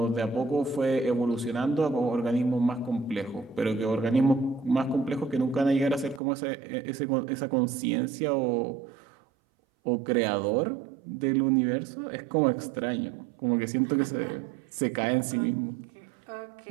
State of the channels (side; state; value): left; drops out; at 6.2 s